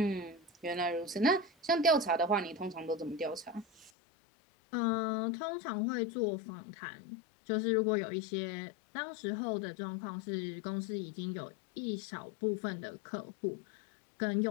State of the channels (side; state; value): right; drops out; at 3.9 s